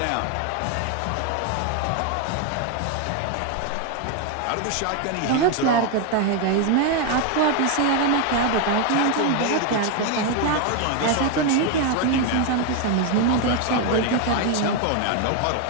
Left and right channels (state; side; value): different; both; correlation 0.01